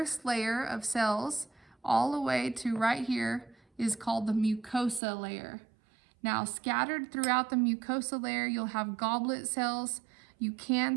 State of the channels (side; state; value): left; drops out; at 5.0 s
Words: layer of cells, all the way to right here, is called the mucosa layer. Now, scattered throughout the mucosa layer, you'll have goblet cells. You can